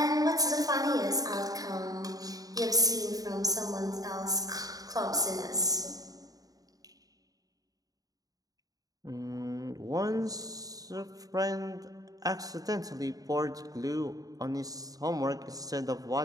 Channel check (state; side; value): late; left; 0.18 ms